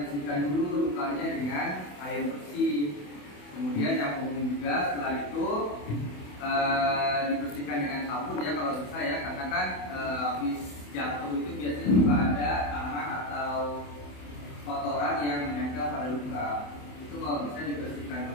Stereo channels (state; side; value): late; right; 27 ms